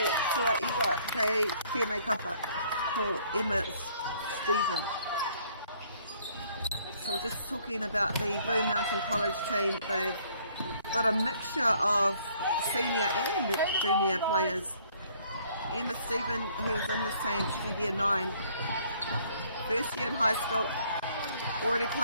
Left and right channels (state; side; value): inverted; both; correlation -0.62